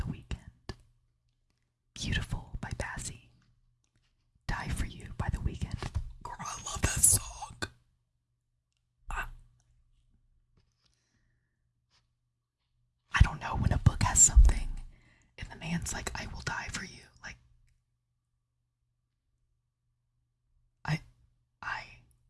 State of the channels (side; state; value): both; identical; correlation 1.00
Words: Weeknd. Beautiful by Bazzi. Die For You by The Weeknd. Girl, I love that song. I don't know, when a book has something and the man's like, I will die for you. Like,